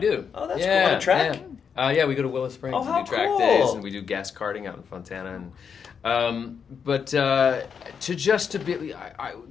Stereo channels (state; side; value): quieter; right; 6.7 dB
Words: Oh, that's yeah, cool. On a track? Yeah, we go to Willow Springs Oh, and how do track cool. days, and we do gas karting out in Fontana. And to be,